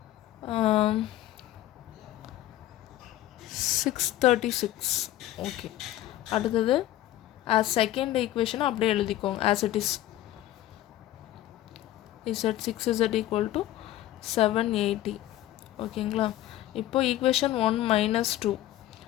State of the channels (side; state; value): right; quieter; 14.2 dB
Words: 636. ஓகே, அடுத்தது செகண்ட் ஈக்குவேஷனை அப்படியே எழுதிக்கோங்க ஆஸ் இட் இஸ். Z6z = 780. ஓகேங்களா? இப்போ ஈக்குவேஷன் 1 - 2.